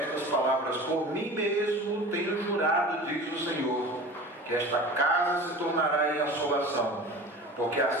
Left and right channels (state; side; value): normal; both; correlation 0.37